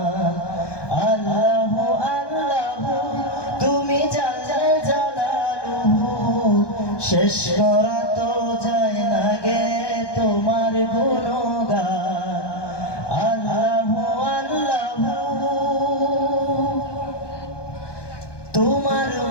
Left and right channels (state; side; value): late; right; 1.2 ms